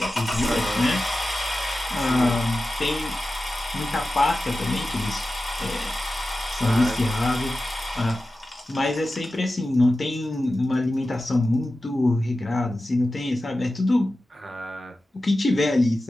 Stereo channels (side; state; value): both; normal; correlation 0.94